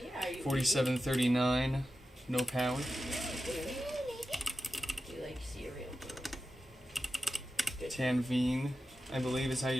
Are you 4739, no power. You like cereal? Good. Tanveen, I believe is how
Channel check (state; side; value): normal; both; correlation 0.92